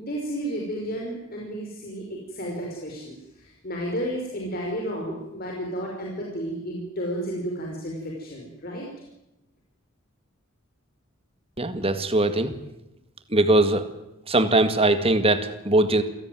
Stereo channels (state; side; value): normal; both; correlation 0.40